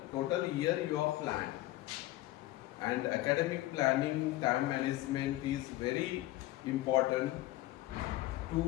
total year you have planned. And academic planning, time management is very important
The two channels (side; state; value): right; quieter; 16.6 dB